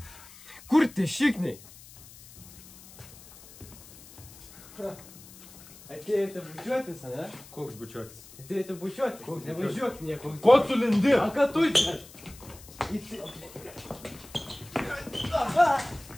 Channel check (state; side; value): noise; left; hiss, 20 dB below the sound